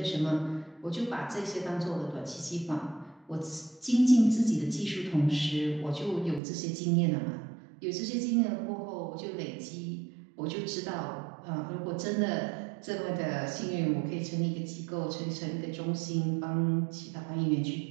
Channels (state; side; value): drops out; left; at 6.4 s